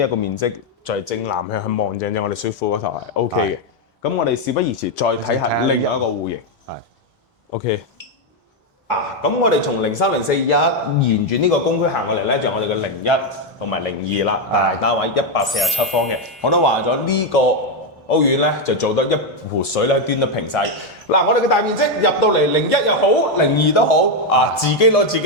個面積就係正南向去望正我哋水庫嗰頭係 OK 嘅。咁我哋事不宜遲，再睇下另外一個戶型。係 OK。咁我哋從0304沿住呢個公區行過嚟咧，就係我哋嘅01同埋02啦，大單位147方嘅。我都話咗呢個屋苑咧，就做得一壺水咧端得平晒。嗱，我哋嘅大面積入到嚟01又好，02都好，自己攞自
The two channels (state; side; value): normal; both; correlation 0.04